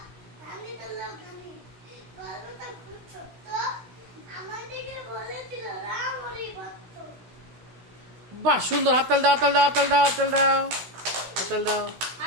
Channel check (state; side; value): late; left; 16 ms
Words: রানী হলো গানি। গল্পটা খুব ছোট্ট, আমাদেরকে বলেছিল রাম হরি ভক্ত। বাহ সুন্দর, হাততাল দাও, হাততাল দাও, হাততাল দাও, হাততাল দাও, হাততাল দাও।